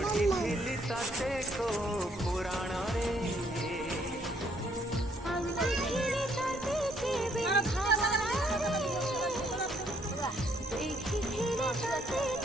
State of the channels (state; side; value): normal; both; correlation 0.67